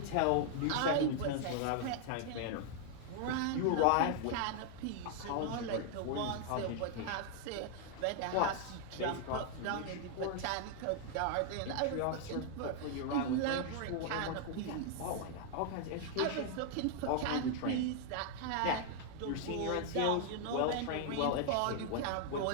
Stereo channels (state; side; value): different; both; correlation 0.00